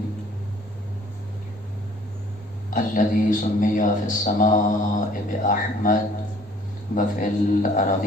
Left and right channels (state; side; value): normal; both; correlation 0.55